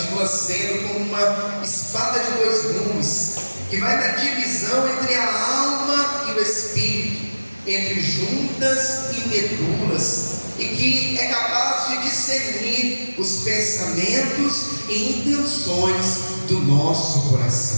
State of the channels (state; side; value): inverted; both; correlation -1.00